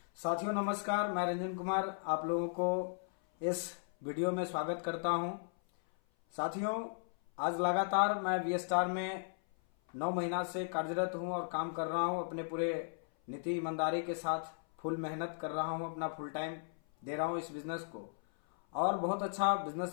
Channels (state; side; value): silent; right; 54 dB below the other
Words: साथियों नमस्कार, मैं रंजन कुमार आप लोगों को इस वीडियो में स्वागत करता हूं। साथियों, आज लगातार मैं वी स्टार में 9 महीना से कार्यरत हूं और काम कर रहा हूं। अपने पूरे नीति ईमानदारी के साथ फुल मेहनत कर रहा हूं, अपना फुल टाइम दे रहा हूं इस बिजनेस को और बहुत अच्छा